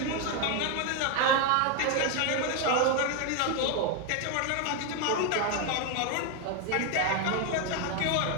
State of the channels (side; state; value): both; different; correlation 0.01